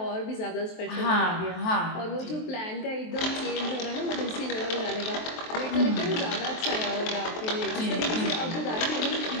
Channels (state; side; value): late; right; 23 ms